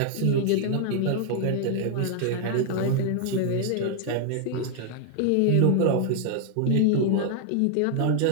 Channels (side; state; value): both; different; correlation 0.00